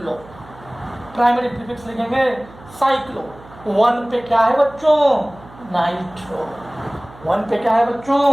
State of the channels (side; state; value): right; noise; hum, 21 dB below the sound